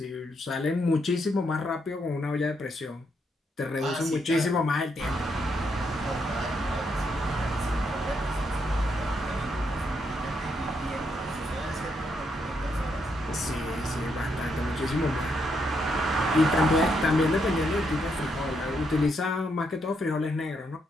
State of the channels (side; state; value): both; normal; correlation 0.77